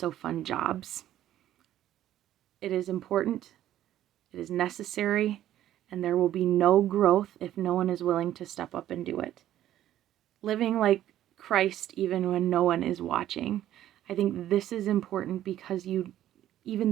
fun jobs. It is important, it is necessary, and there will be no growth if no one is willing to step up and do it. Living like Christ even when no one is watching. I think this is important because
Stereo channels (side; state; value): left; quieter; 12.6 dB